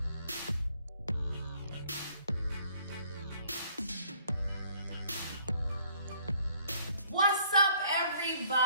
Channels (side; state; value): both; inverted; correlation -0.61